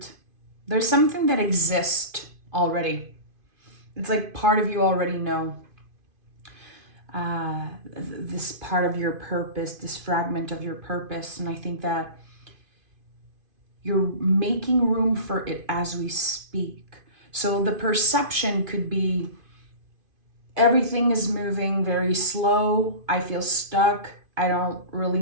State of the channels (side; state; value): left; late; 2.5 ms